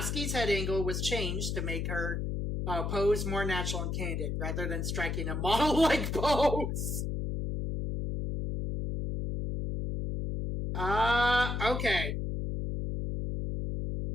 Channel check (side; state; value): left; noise; hum, 2 dB below the sound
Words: head angle was changed to make her pose more natural and candid, rather than striking a model-like pose. Okay.